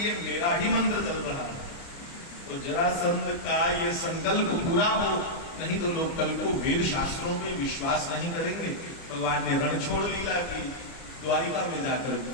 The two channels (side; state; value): right; late; 29 ms